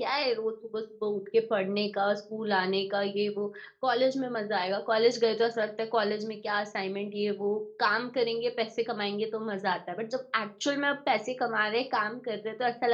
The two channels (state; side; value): identical; both; correlation 1.00